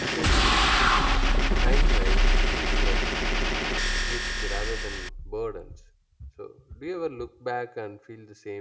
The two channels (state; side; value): identical; both; correlation 1.00